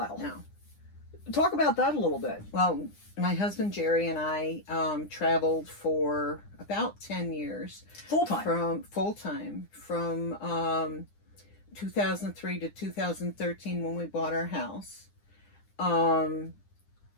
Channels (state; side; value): late; right; 9.9 ms